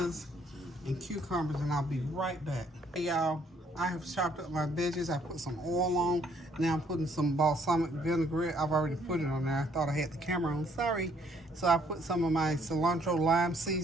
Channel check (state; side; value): normal; both; correlation 0.65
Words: and cucumbers, and I'll be right back. Hey, y'all. I have chopped up my veggies. I put some oil on. Now I'm putting some balsamic vinaigrette. I've already put it on there. I thought I had the camera on. Sorry. So I put some of my cilantro lime